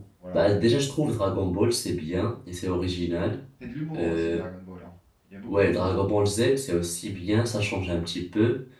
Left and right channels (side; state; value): both; identical; correlation 1.00